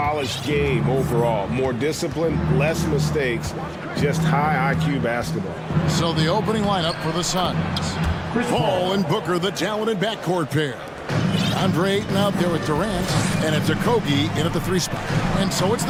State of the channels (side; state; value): both; identical; correlation 1.00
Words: game overall. More discipline, less mistakes, just high IQ basketball. So the opening lineup for the Suns. Paul and Booker, the talented backcourt pair. Andre Ayton out there with Durant, and it's Okogie in at the 3 spot. And so it's